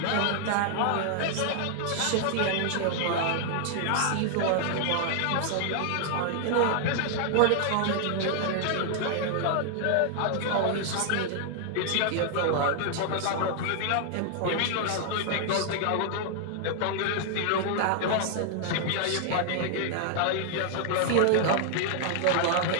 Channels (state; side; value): different; both; correlation 0.00